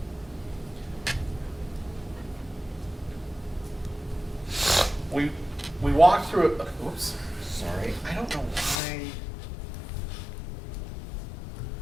we walked through it. Oops, sorry. I don't know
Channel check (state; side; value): drops out; right; at 8.8 s